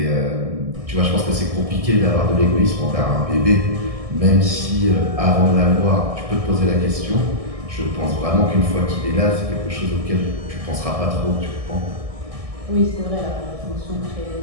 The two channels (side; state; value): left; late; 1.6 ms